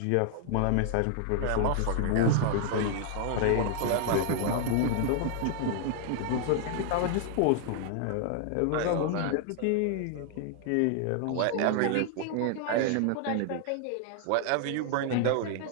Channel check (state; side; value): different; both; correlation 0.00